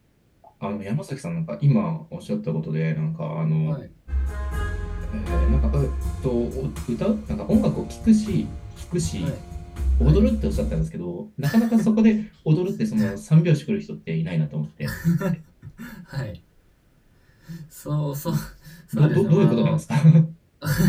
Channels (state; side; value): identical; both; correlation 1.00